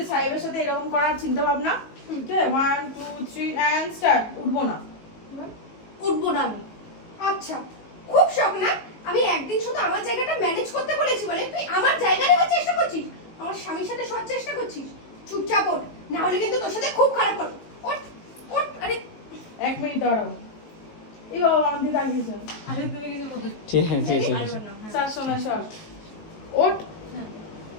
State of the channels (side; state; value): right; late; 19 ms